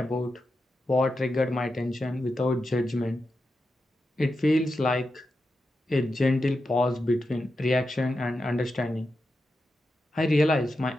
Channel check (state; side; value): normal; both; correlation 0.89